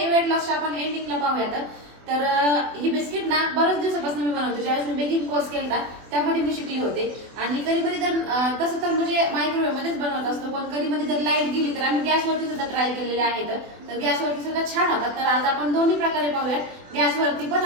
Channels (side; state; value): left; late; 24 ms